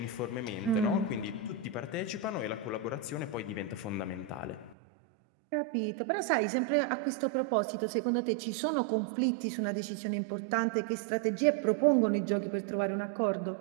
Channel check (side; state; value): left; drops out; at 4.8 s